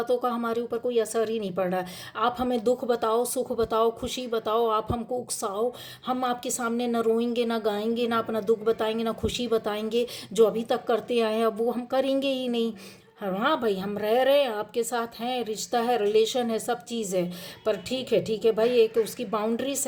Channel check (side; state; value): both; identical; correlation 1.00